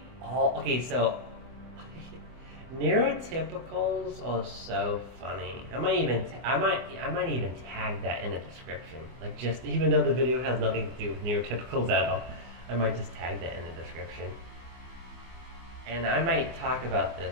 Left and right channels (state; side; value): late; left; 24 ms